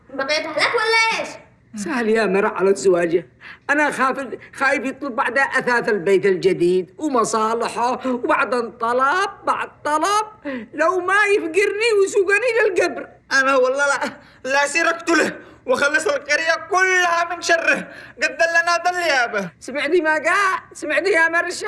بقيت أهلك ولا إيش؟ سهل يا مرة على زواجه. أنا خايف يطلب بعد أثاث البيت الجديد ومصالحه وبعدين طلب بعد طلب لو ما يفقرني ويسوقني للقبر. انا والله لا سيركت له وخلص القرية كلها من شره. قد دلنا ضل يابا. سمعتي ما قال؟ سمعتي يا مرشا؟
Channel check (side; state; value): both; identical; correlation 1.00